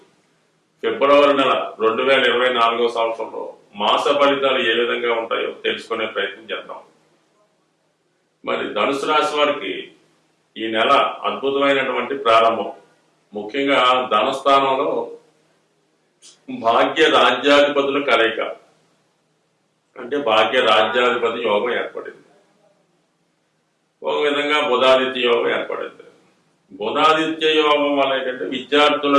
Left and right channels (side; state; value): both; identical; correlation 1.00